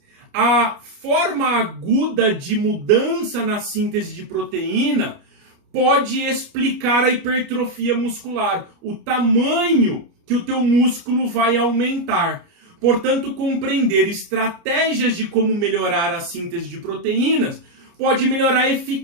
a forma aguda de mudança na síntese de proteína pode explicar a hipertrofia muscular, o tamanho que o teu músculo vai aumentar. Portanto, compreender estratégias de como melhorar a síntese de proteínas pode melhorar a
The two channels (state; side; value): late; left; 29 ms